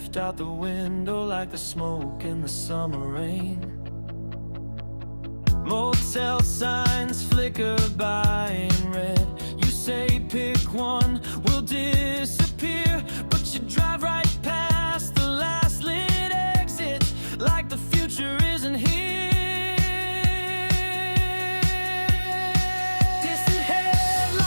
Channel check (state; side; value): inverted; both; correlation -1.00